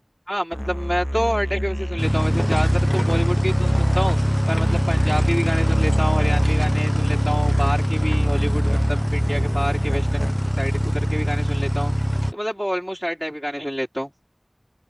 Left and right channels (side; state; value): both; identical; correlation 1.00